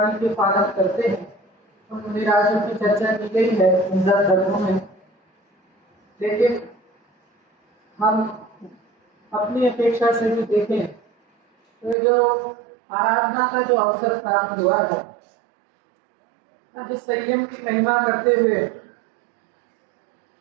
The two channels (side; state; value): left; drops out; at 12.0 s